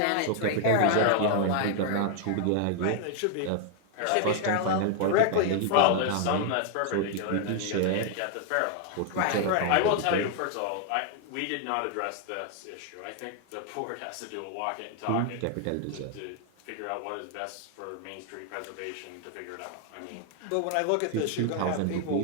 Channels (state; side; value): different; both; correlation 0.00